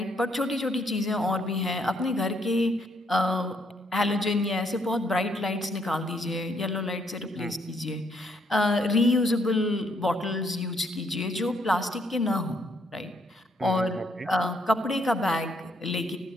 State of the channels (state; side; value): normal; both; correlation 0.71